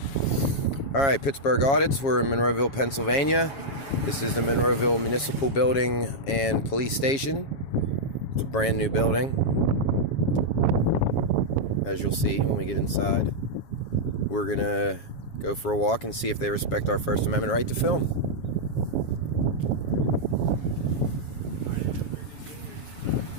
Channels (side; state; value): right; late; 7.2 ms